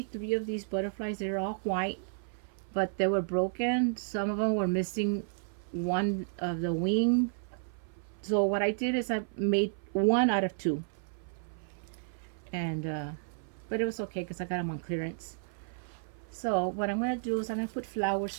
3 of these butterflies. They're all white, but they were broken. Some of them were missing one of the wing. So what I did is I made 1 out of 2. And, but it was okay because I got them on clearance. So what I'm going to do is I'm going to put flowers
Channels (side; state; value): left; silent; 56 dB below the other